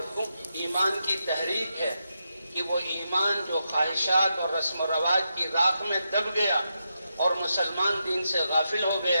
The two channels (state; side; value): inverted; both; correlation -0.85